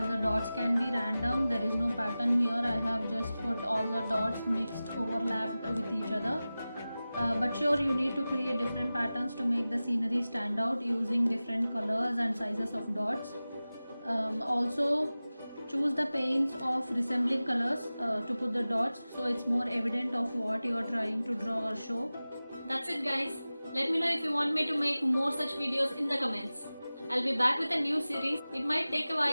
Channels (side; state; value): both; inverted; correlation -0.96